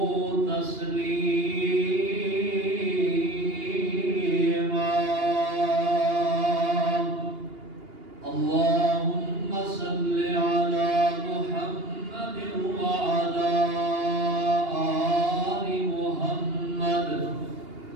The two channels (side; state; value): left; late; 2.8 ms